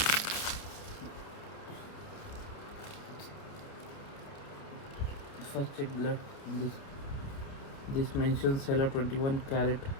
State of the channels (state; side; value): late; right; 29 ms